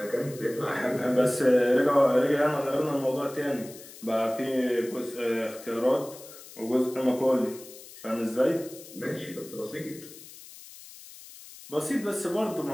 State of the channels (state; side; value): noise; left; hiss, 17 dB below the sound